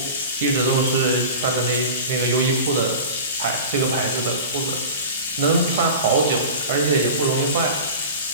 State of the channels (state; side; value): inverted; both; correlation -0.33